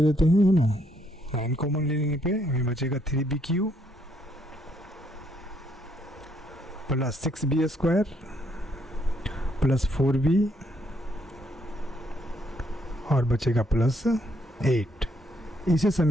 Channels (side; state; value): both; normal; correlation 0.72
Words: लेते हैं, है ना, 9 कॉमन लेने पे हमें बचेगा 3b³ plus 6b² plus 4b और बचेगा प्लस 8। इसे